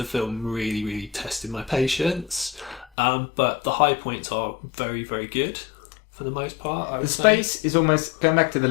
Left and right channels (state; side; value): drops out; right; at 2.9 s